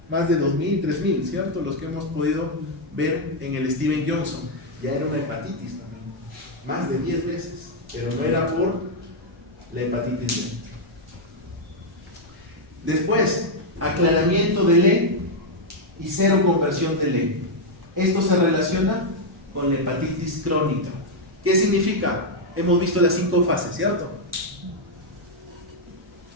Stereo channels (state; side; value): normal; both; correlation -0.01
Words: Más de 2.000, 3.000, ¿cierto? Los que hemos podido ver en el Steven Johnson. Ya era una hepatitis también. Más de 10 veces. Pero no era por la hepatitis B. Después, aclaramiento del E y cero conversión del E. Esto se relaciona con la hepatitis crónica. ¿Qué significa? Hemos visto las 5 fases, ¿cierto?